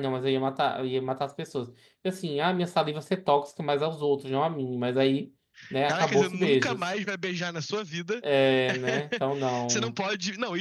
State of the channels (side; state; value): both; identical; correlation 1.00